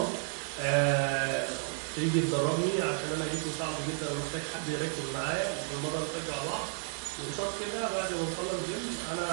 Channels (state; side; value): silent; left; 56 dB below the other